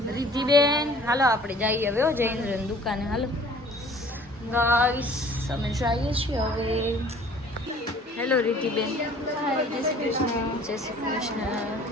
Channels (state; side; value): normal; both; correlation 0.51